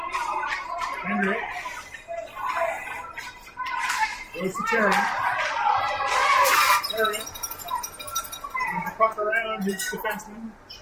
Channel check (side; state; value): both; identical; correlation 1.00